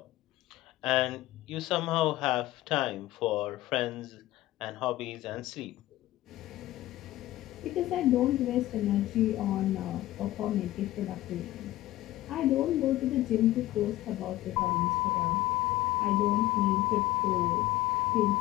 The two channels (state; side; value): quieter; right; 15.8 dB